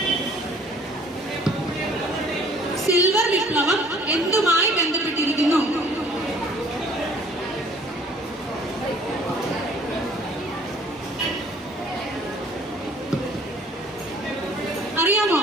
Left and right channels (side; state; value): both; normal; correlation 0.55